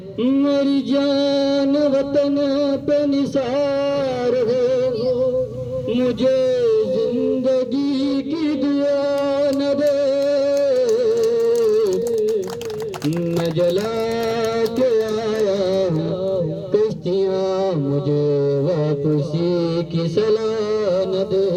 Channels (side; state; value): both; identical; correlation 1.00